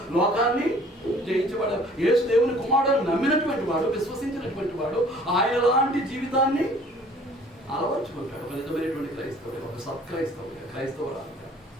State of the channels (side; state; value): both; normal; correlation 0.53